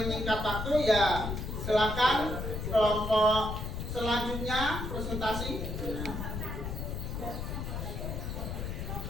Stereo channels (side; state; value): left; noise; rumble, 4 dB below the sound